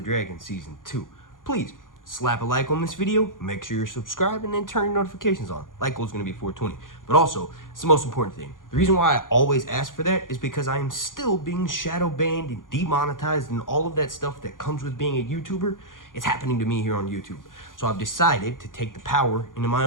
Dragon Season 2. Please, slap a like on this video, make sure you're subscribed, and then turn your notifications on. Like goal is going to be 420. But also, it's the most important thing. The reason why I always ask for that is because I am still being shadow banned and demonetized and all of that stuff that comes with being a YouTuber. It's happening to me here on YouTube. So I've decided to take the power into my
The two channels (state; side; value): late; right; 0.89 ms